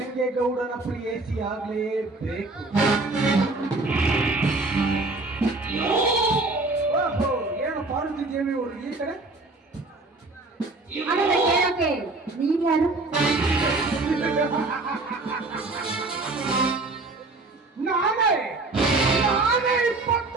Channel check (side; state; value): left; quieter; 3.2 dB